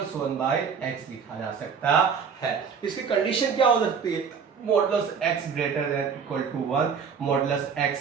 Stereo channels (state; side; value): quieter; left; 6.3 dB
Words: 1/x लिखा जा सकता है। इसकी कंडीशन क्या हो सकती है modulus x greater than equal to 1, modulus x